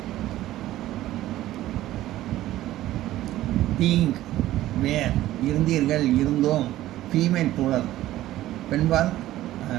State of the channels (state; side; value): quieter; left; 14.7 dB